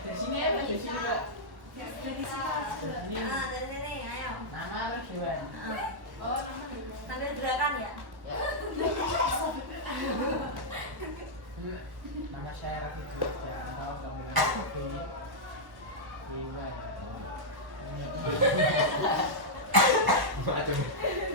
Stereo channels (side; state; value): left; late; 1.1 ms